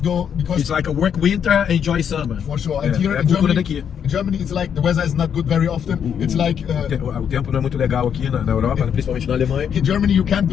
go because It's like a work winter, enjoy summer. for sure. And É, here é a in cultura Germany, daqui. it's like the weather is not good very often. It's like O tempo não é muito legal aqui na Europa, principalmente na Alemanha. in Germany you can't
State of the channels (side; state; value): right; quieter; 8.1 dB